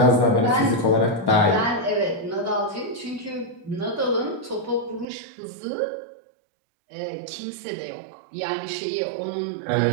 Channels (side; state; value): left; drops out; at 5.1 s